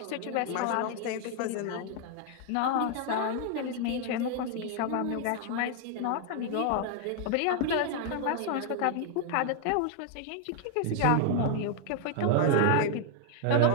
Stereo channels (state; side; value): different; both; correlation 0.00